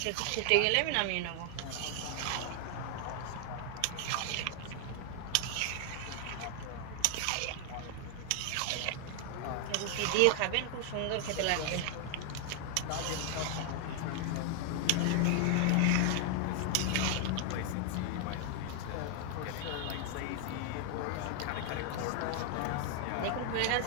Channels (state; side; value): different; both; correlation 0.00